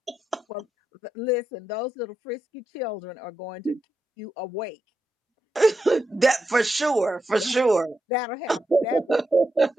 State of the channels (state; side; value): normal; both; correlation 0.85